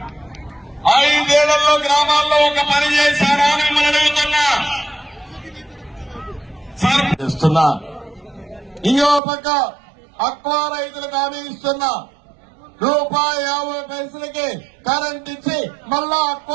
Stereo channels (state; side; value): drops out; left; at 9.2 s